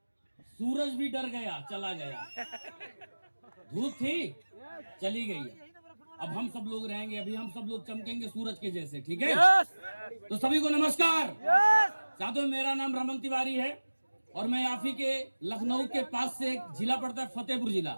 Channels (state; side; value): inverted; both; correlation -1.00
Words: सूरज भी डर गया, चला गया। धूप थी, चली गई। अब हम सब लोग रहेंगे, अभी हम सब लोग चमकेंगे सूरज के जैसे, ठीक है? तो सभी को नमस्कार। साथियों, मेरा नाम रमन तिवारी है और मैं आप ही के लखनऊ के पास से एक जिला पड़ता है, फतेहपुर जिला।